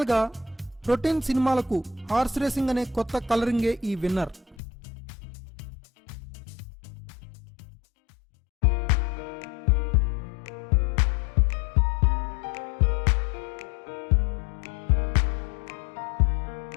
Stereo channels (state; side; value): drops out; right; at 4.5 s